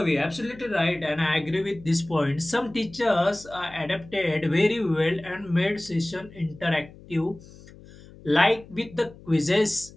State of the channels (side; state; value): left; noise; hum, 21 dB below the sound